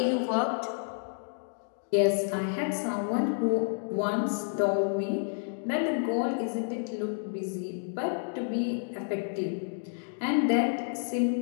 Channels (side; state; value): right; silent; digital silence